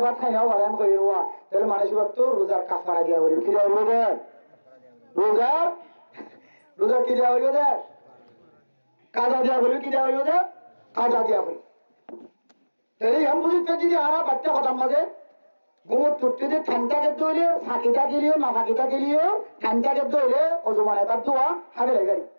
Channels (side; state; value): both; inverted; correlation -1.00